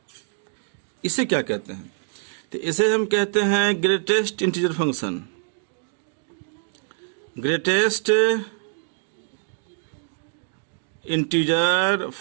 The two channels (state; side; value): silent; left; digital silence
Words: इसे क्या कहते हैं। तो इसे हम कहते हैं greatest integer function. Greatest integer